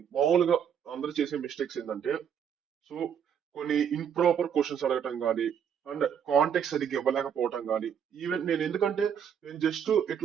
మామూలుగా అందరూ చేసే మిస్టేక్స్ ఏంటంటే సో కొన్ని ఇంప్రాపర్ క్వశ్చన్స్ అడగటం కానీ అండ్ కాంటెక్ట్ సరిగ్గా ఇవ్వలేకపోవటం కానీ ఈవెన్ ఎందుకంటే నేను జస్ట్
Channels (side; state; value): left; quieter; 8.2 dB